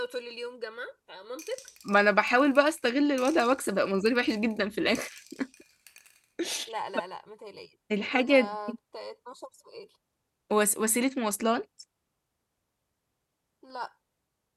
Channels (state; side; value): identical; both; correlation 1.00